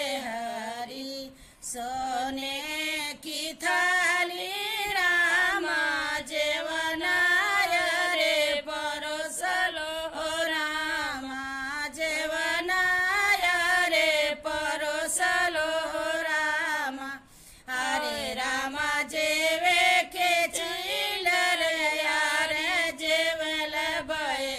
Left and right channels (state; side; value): identical; both; correlation 1.00